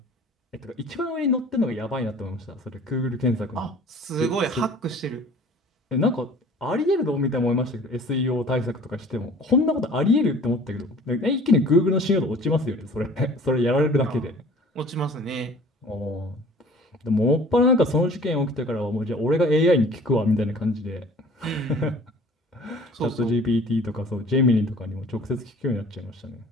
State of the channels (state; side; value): normal; both; correlation 0.48